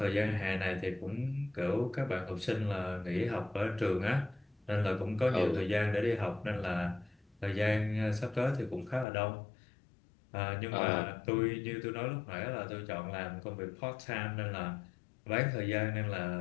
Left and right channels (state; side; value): drops out; right; at 9.1 s